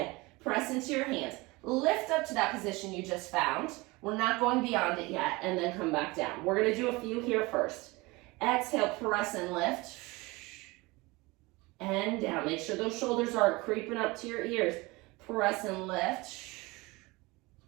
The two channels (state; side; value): quieter; left; 23.3 dB